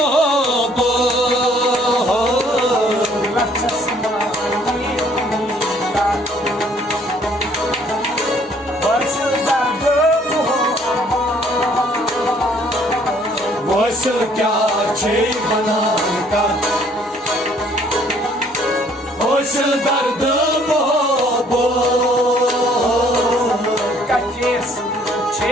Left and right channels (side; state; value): both; normal; correlation 0.61